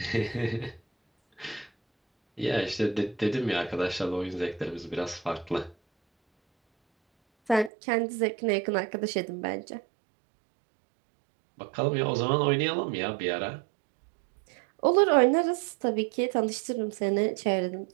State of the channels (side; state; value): left; drops out; at 7.7 s